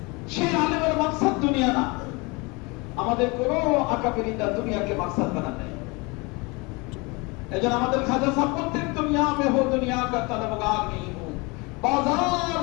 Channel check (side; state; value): right; quieter; 27.1 dB